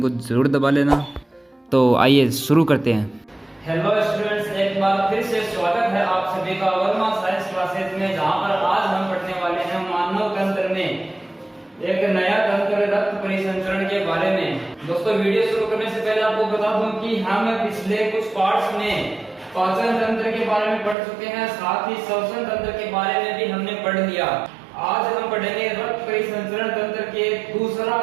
को जरूर दबा लेना। तो आइए शुरू करते हैं। हेलो स्टूडेंट्स, एक बार फिर से स्वागत है आप सभी का वर्मा साइंस क्लासेस में, जहां पर आज हम पढ़ने वाले हैं मानव तंत्र में एक नया तंत्र रक्त परिसंचरण के बारे में। दोस्तों, वीडियो शुरू करने से पहले आपको बता दूं कि हम पिछले कुछ पार्ट्स में पाचन तंत्र के बारे में पढ़ चुके हैं, साथ ही श्वसन तंत्र के बारे में भी हमने पढ़ लिया। आज हम पढ़ेंगे रक्त परिसंचरण तंत्र के दूसरा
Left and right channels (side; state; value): left; drops out; at 21.0 s